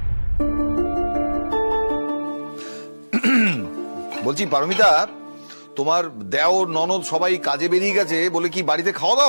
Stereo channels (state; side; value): inverted; both; correlation -1.00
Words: বলছি পারমিতা, তোমার দেওর ননদ সবাই কাজে বেরিয়ে গেছে বলে কি বাড়িতে খাওয়া